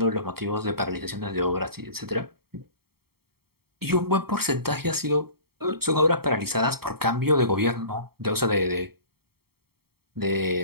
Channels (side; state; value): left; late; 0.95 ms